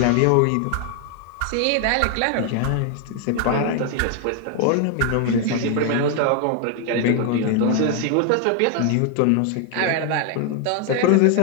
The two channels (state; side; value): different; both; correlation 0.00